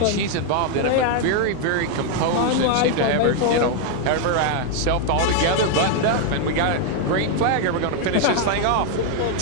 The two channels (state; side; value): different; both; correlation 0.00